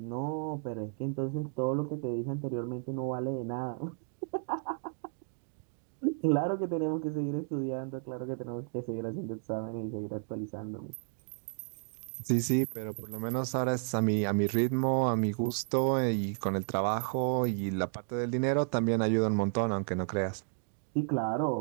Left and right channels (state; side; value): silent; left; 56 dB below the other